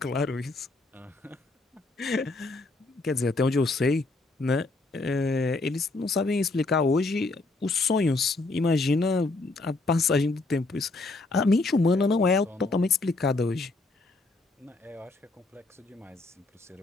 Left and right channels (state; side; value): quieter; right; 3.3 dB